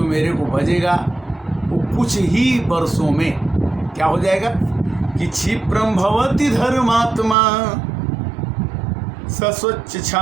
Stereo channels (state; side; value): drops out; left; at 7.4 s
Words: मेरे को भजेगा वो कुछ ही वर्षों में क्या हो जाएगा कि क्षिप्रम भवति धर्मात्मा सस्वच्छ